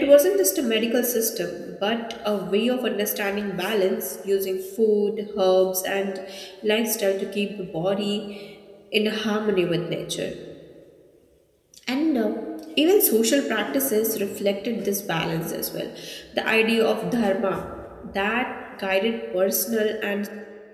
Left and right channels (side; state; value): both; identical; correlation 1.00